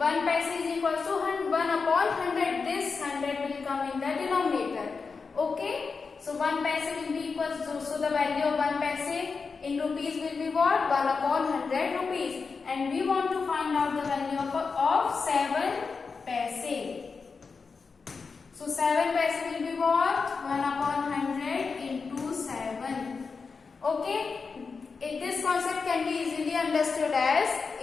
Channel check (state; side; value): quieter; right; 4.9 dB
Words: paise is equals to 1 upon 100. This 100 will come in the denominator. Okay, so 1 paise will be equals to, so the value of 1 paise in rupees will be what? 1 upon 100 rupees. And we want to find out the value of 7 paise. So 7 paise will be what? 1 upon 100 into 7. Okay. This concept can be easily understood as